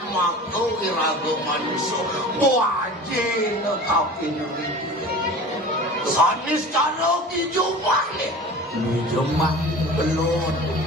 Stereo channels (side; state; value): both; normal; correlation 0.38